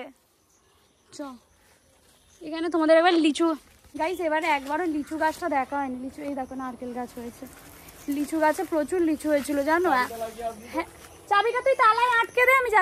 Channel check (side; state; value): both; identical; correlation 1.00